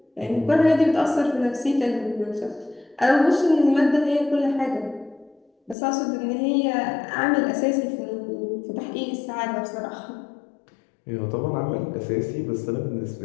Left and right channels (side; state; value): right; drops out; at 5.8 s